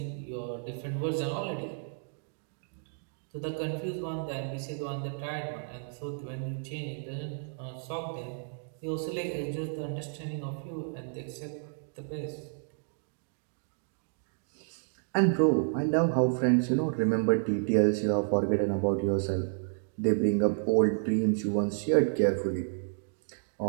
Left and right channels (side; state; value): left; silent; digital silence